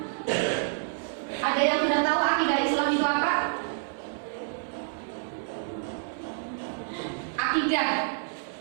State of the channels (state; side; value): silent; left; 59 dB below the other